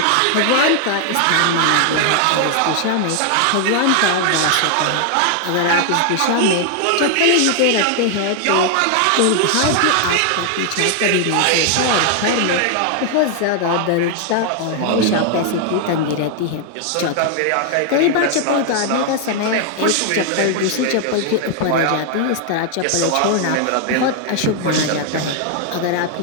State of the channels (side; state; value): both; different; correlation 0.00